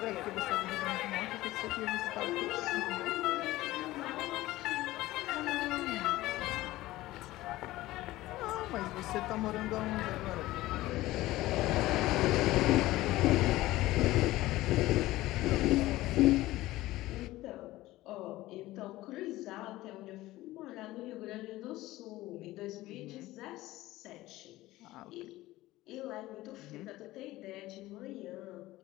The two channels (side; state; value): right; quieter; 17.3 dB